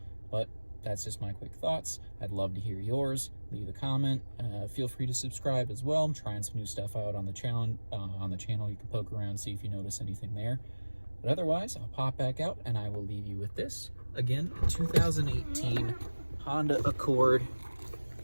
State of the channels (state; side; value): inverted; both; correlation -1.00